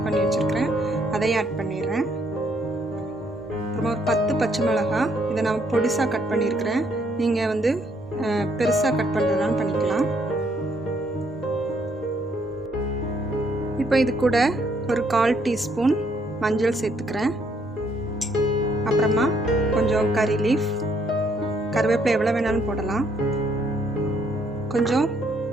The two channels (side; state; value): both; normal; correlation 0.69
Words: பண்ணி வச்சுருக்கிறேன். அதையும் ஆட் பண்ணிடுறேன். அப்புறமா ஒரு 10 பச்சை மிளகாய், இதை நான் பொடிசாக கட் பண்ணியிருக்கிறேன். நீங்கள் பெருசாக கட் பண்ணுறதுனால பண்ணிக்கலாம். இப்போ இது கூட ஒரு 1/4 டீஸ்பூன் மஞ்சள் சேர்த்துக்கிறேன். அப்புறமா கொஞ்சம் கறி லீஃப், கருவேப்பிலை எவ்வளோ வேணாலும் போடலாம். கொஞ்சம்